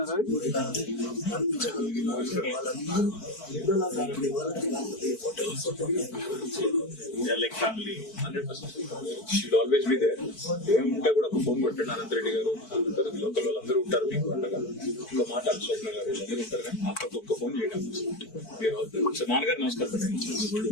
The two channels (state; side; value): late; right; 4.5 ms